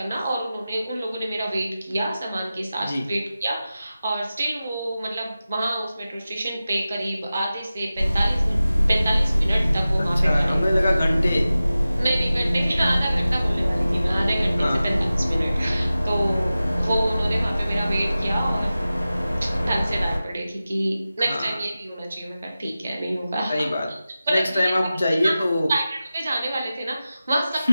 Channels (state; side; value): inverted; both; correlation -0.95